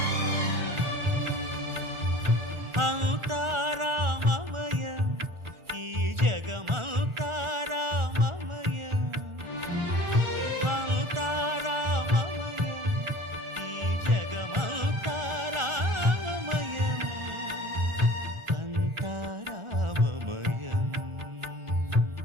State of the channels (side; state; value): left; late; 1.4 ms